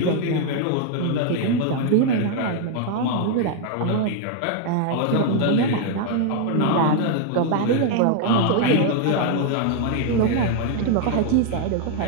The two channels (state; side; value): different; both; correlation 0.00